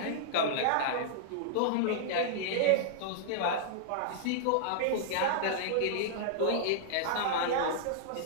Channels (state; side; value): different; both; correlation -0.01